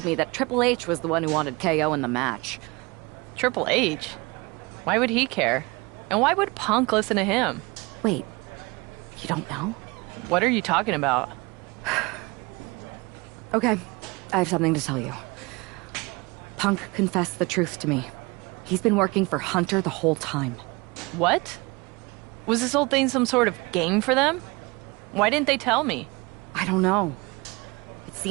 me that Triple H was the one who wanted KO in the match. Triple H? Why would he care? And why would Punk listen to him? Wait, you don't know? What are you talking about? Okay, I have something to tell you. Punk confessed the truth to me. He's been working for Hunter the whole time. What? Was this whole thing some sort of game for them? Why didn't they tell me? I don't know. It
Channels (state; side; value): quieter; left; 25.3 dB